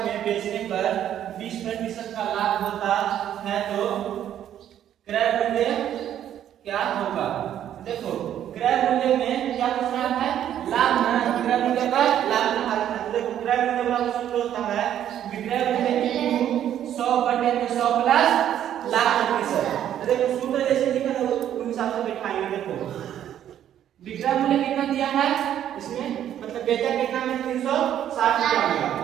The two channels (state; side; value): quieter; left; 10.7 dB